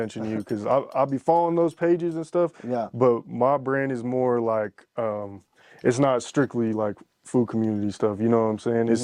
to you because I'll be following those pages and stuff. Yeah. But my brand is more like, it's not strictly like Foo Community stuff. You know what I'm saying?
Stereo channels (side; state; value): both; identical; correlation 1.00